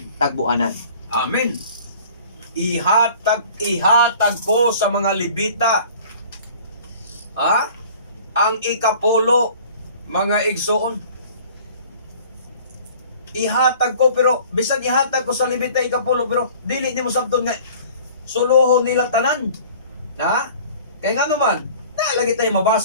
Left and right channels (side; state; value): both; inverted; correlation -0.48